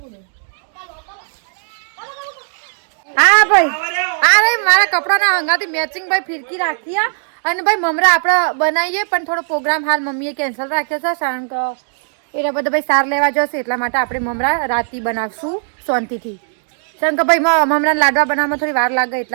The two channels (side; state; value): left; silent; digital silence